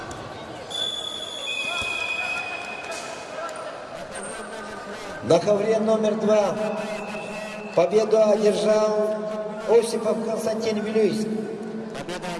На ковре номер 2 победу одержал Осипов Константин Вилюйск.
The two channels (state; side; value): identical; both; correlation 1.00